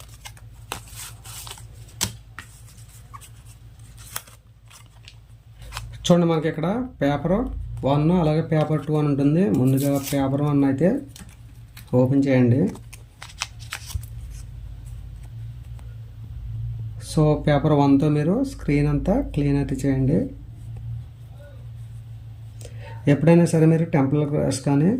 చూడండి, మనకి ఇక్కడ పేపర్ 1 అలాగే పేపర్ 2 అని ఉంటుంది. ముందుగా పేపర్ 1 అయితే ఓపెన్ చేయండి. సో పేపర్ 1తో మీరు స్క్రీన్ అంతా క్లీన్ అయితే చేయండి. ఎప్పుడైనా సరే మీరు టెంపర్ గ్లాస్ కానీ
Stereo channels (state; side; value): identical; both; correlation 1.00